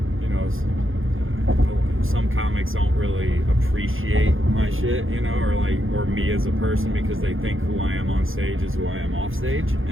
you know, some comics don't really appreciate my shit, you know, or me as a person, because they think who I am on stage is who I am off stage.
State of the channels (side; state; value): left; late; 0.59 ms